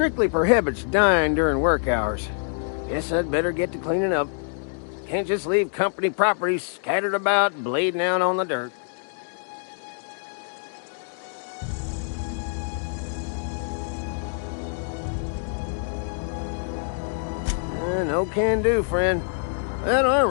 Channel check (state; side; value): silent; right; digital silence